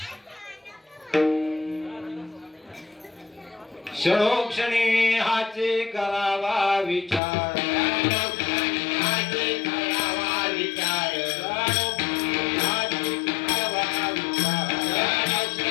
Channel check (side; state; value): right; drops out; at 7.2 s